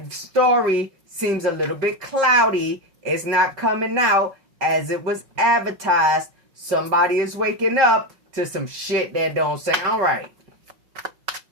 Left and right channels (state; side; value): late; left; 5.5 ms